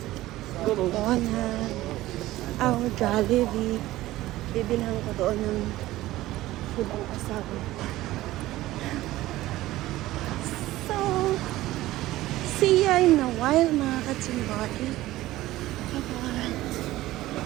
McDonald's. Jollibee. Bibilhan ko doon ng food ang asawa. So, see ya in a while mga katsimbari.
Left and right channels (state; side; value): quieter; left; 16.5 dB